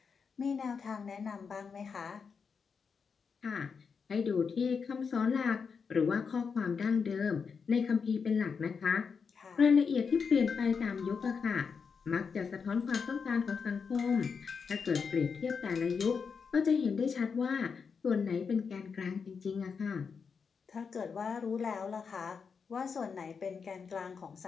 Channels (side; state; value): right; quieter; 5.8 dB